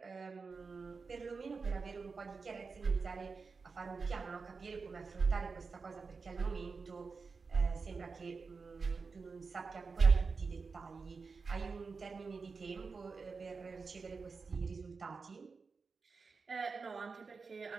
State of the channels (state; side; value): quieter; left; 4.7 dB